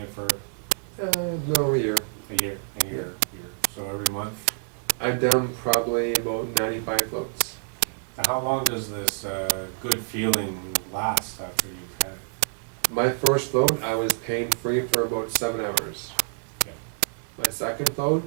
for No, a year. a year, and you're so every month. I've done probably about 95 floats. Now, how long does this good feeling last after you've had it? My first float, I was pain-free for about 7 hours. Okay. My second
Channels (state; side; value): silent; left; 60 dB below the other